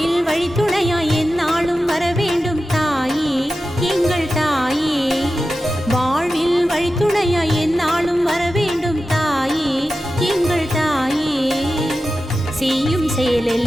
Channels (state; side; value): normal; both; correlation 0.93